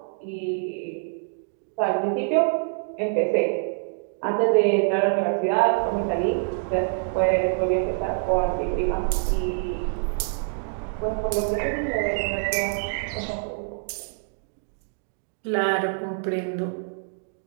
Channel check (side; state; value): left; silent; digital silence